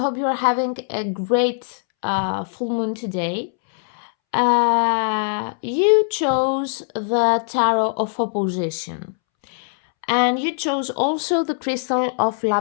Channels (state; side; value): silent; right; 65 dB below the other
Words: you are having a great full moon today. You chose the Tarot of Opposition, and you chose also the crystal of